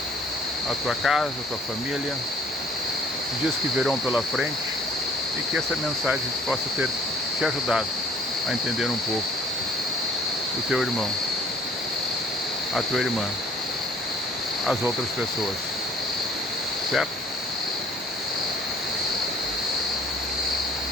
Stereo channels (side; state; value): both; normal; correlation 0.56